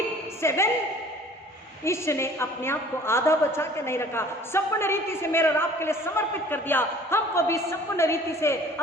7, ईश्वर ने अपने आप को आधा बचा के नहीं रखा, संपूर्ण रीति से मेरे और आपके लिए समर्पित कर दिया। हमको भी संपूर्ण रीति से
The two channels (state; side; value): normal; both; correlation 0.50